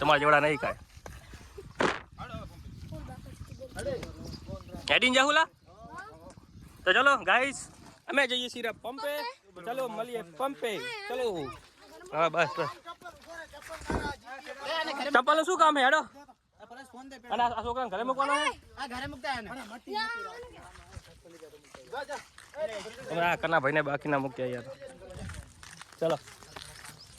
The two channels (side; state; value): both; identical; correlation 1.00